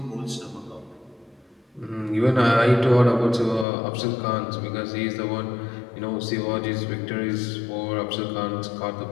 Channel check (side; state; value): right; drops out; at 3.7 s